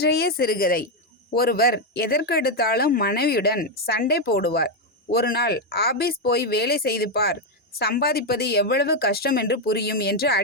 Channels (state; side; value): normal; both; correlation 0.04